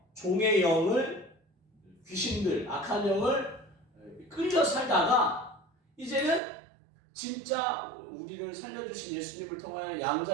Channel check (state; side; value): drops out; left; at 6.4 s